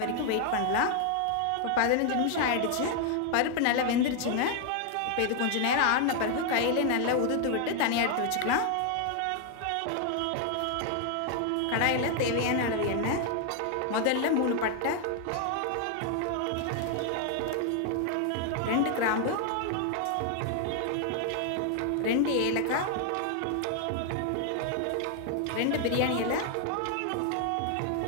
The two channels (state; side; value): different; both; correlation 0.00